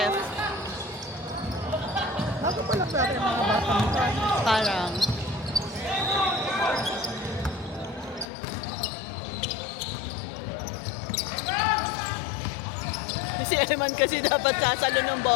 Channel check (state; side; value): drops out; right; at 8.2 s